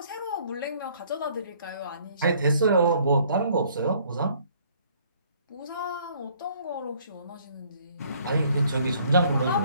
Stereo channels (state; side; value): inverted; both; correlation -0.61